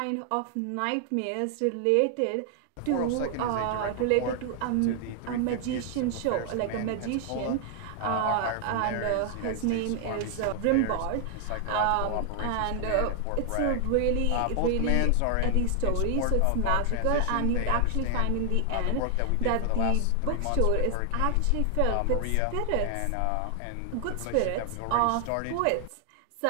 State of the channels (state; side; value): different; both; correlation 0.00